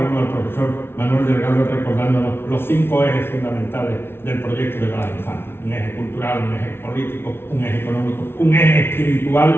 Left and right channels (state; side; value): late; right; 0.11 ms